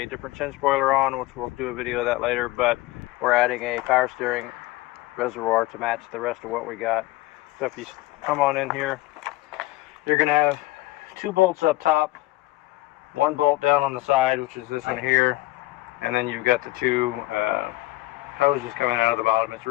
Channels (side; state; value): right; quieter; 18.6 dB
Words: different chin spoiler on, which we'll do a video of that later, but we're adding a power steering reservoir to match the rest of what we got. So if you come on in here, you're going to have 2 bolts up top, 1 bolt down on the side, which is this one here, and then you've got the 2 hoses coming out of the bottom. It's